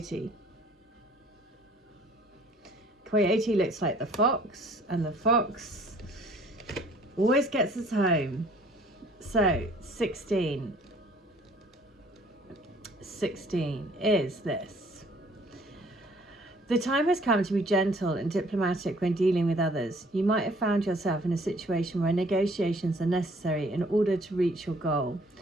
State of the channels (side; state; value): both; normal; correlation 0.57